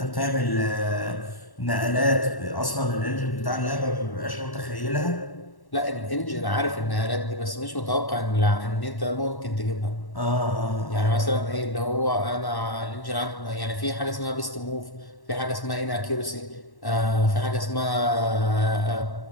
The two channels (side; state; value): right; late; 1.1 ms